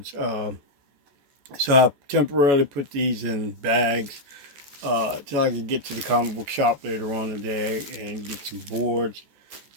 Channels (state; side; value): late; left; 14 ms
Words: So I temporarily put these in bags till I could get to the comic book shop later on today and get some boards.